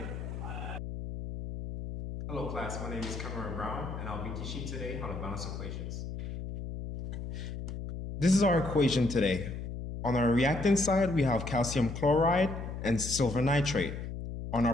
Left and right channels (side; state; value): left; noise; hum, 7 dB below the sound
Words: Hello class, my name is Cameron Brown and I'll be teaching today how to balance equations. This is our equation today. On our reactant side, we have calcium chloride and silver nitrate. On